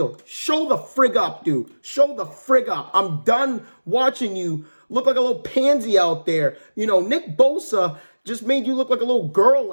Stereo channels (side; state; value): both; inverted; correlation -1.00